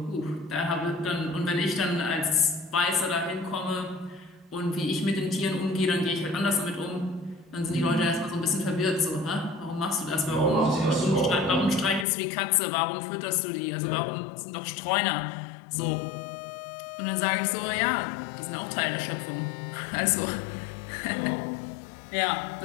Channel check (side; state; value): right; drops out; at 12.1 s